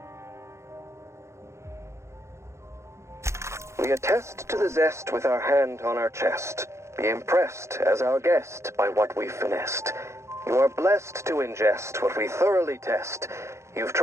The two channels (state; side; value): late; left; 0.14 ms